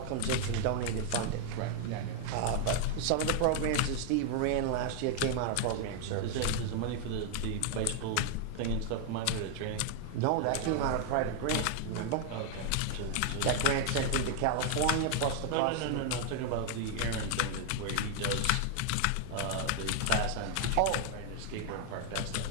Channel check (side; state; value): both; different; correlation 0.00